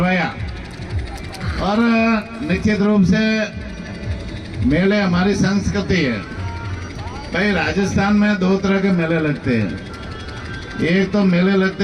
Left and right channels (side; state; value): both; identical; correlation 1.00